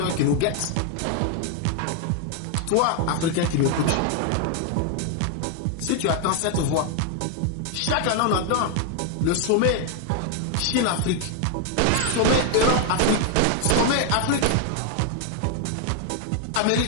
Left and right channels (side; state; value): both; different; correlation 0.00